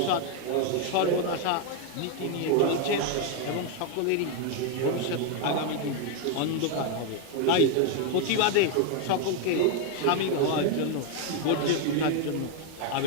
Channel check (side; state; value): both; different; correlation 0.01